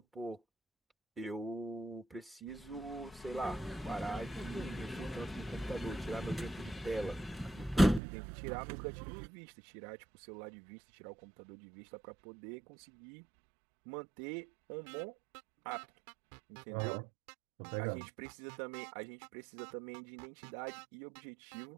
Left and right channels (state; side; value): drops out; left; at 8.0 s